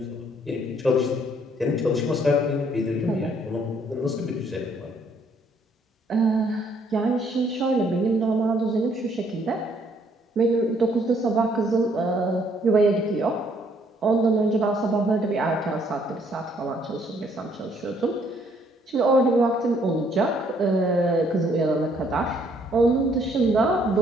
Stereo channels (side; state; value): both; normal; correlation 0.66